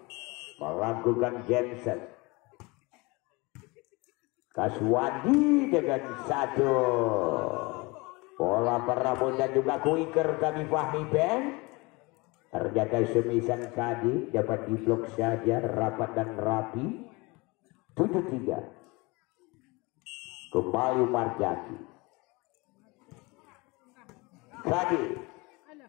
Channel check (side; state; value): right; quieter; 25.4 dB